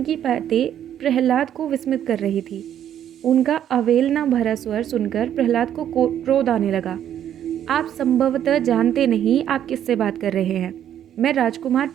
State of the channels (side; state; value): left; quieter; 10.3 dB